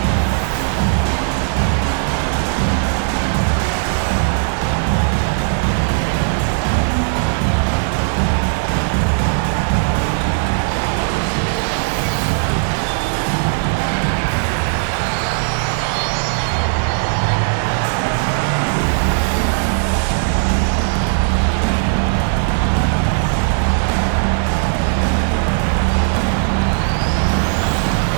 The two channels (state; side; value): silent; left; 68 dB below the other